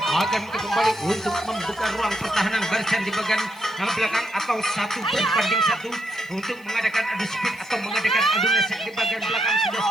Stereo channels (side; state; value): right; noise; hiss, 29 dB below the sound